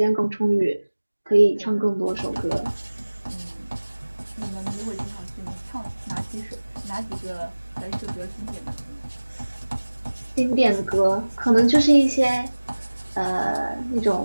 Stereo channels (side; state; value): both; inverted; correlation -1.00